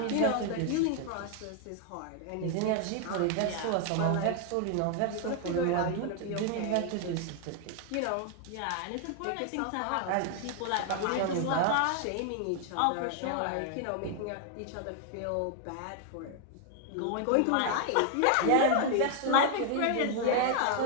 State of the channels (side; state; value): both; different; correlation 0.00